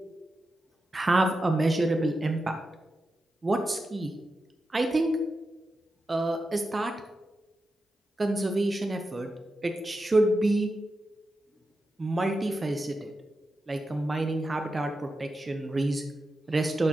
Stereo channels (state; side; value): normal; both; correlation 0.89